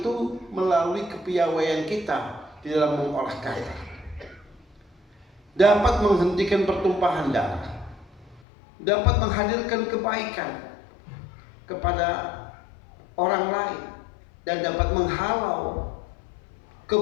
melalui kepiawaian kita di dalam mengolah kata, dapat menghentikan pertumpahan darah, dapat menghadirkan kebaikan kepada orang lain, dan dapat menghalau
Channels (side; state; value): right; drops out; at 8.4 s